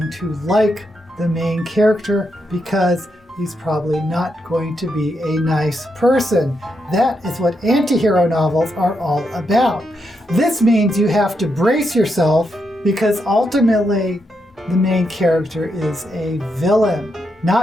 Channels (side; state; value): both; normal; correlation 0.82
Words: to like the main character because he's probably not going to be a nice person. That is what anti-hero novels are all about. This means you have to brace yourself because ultimately the main character is a villain.